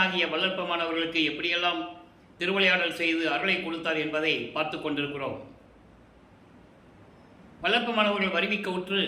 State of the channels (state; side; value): identical; both; correlation 1.00